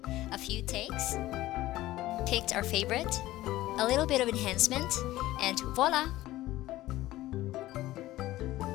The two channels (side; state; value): right; quieter; 16.2 dB